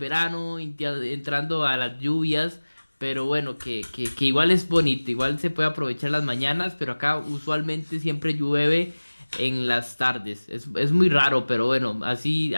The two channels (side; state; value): both; inverted; correlation -1.00